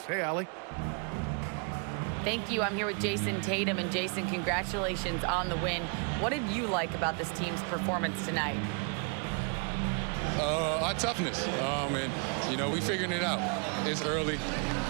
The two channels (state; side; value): quieter; left; 37.4 dB